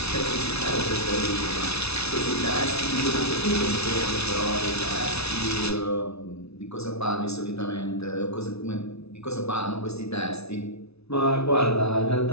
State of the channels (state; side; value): late; right; 0.80 ms